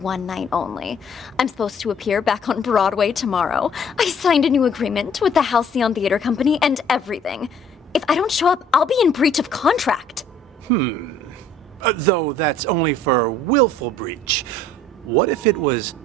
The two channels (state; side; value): normal; both; correlation 0.56